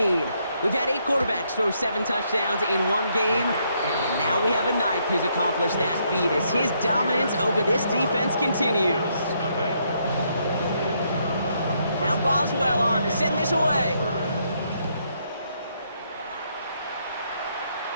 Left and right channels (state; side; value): inverted; both; correlation -0.74